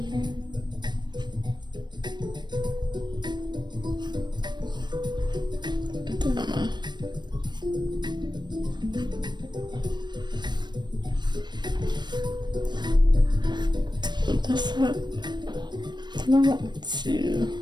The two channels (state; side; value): late; left; 0.22 ms